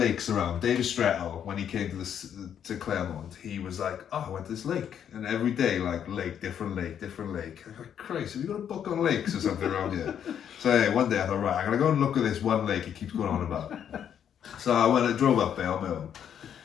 around. David Strettel, when he came to Clermont, he was like, "Oh, I went to this lake, and every day like different lake. I'm like, Christ, have you got a book on lakes or something around here?" So yeah, one day I thought, right, I'm gonna go and look at this one lake he keeps going on about. So I drove up there on my own,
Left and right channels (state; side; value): quieter; right; 8.9 dB